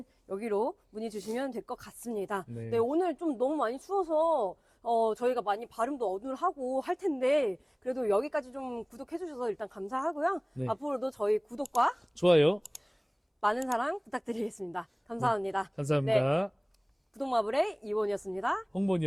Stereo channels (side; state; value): both; identical; correlation 1.00